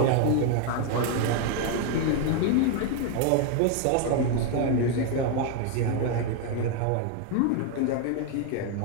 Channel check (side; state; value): both; different; correlation 0.01